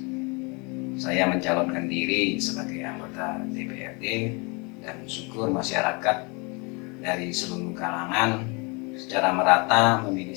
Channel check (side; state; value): right; quieter; 30.0 dB